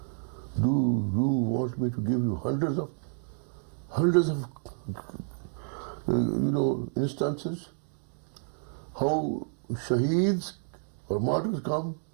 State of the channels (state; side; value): silent; left; 58 dB below the other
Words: Do you want me to give you hundreds of instances how shaheeds or martyrs come